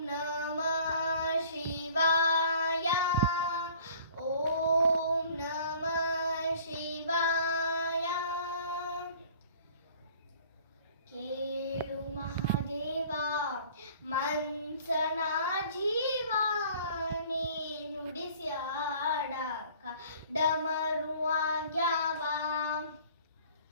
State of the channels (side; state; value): both; inverted; correlation -0.51